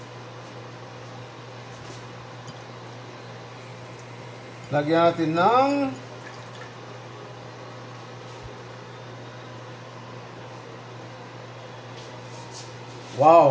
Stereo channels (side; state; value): both; identical; correlation 1.00